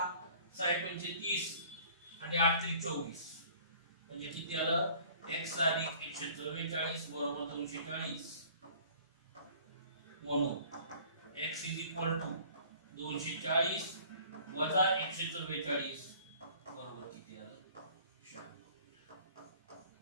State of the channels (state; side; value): inverted; both; correlation -0.52